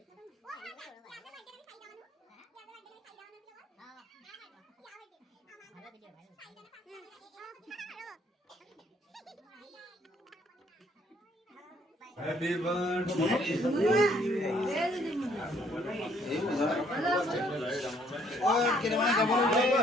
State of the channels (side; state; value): both; normal; correlation 0.65